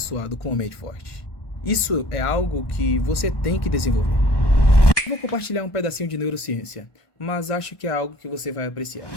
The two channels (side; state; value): right; late; 1.1 ms